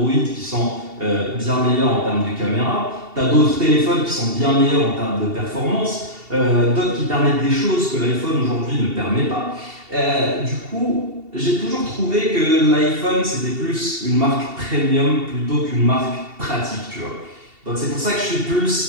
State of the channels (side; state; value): left; late; 2.7 ms